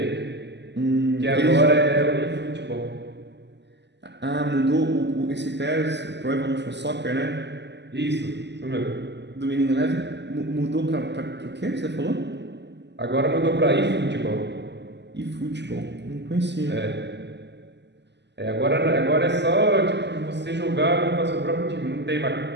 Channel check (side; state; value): left; late; 0.50 ms